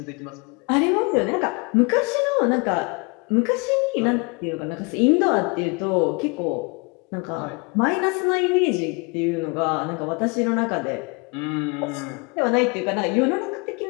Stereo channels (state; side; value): quieter; right; 30.6 dB